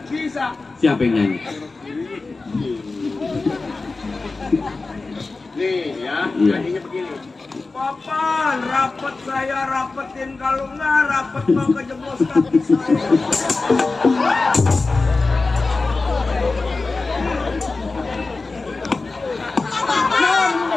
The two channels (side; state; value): right; quieter; 3.7 dB